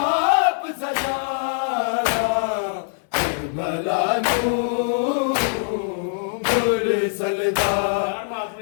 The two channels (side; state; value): right; silent; digital silence